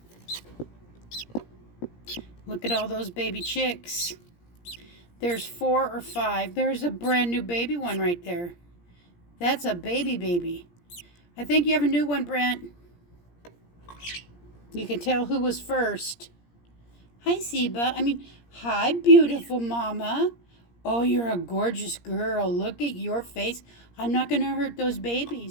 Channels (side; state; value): right; late; 17 ms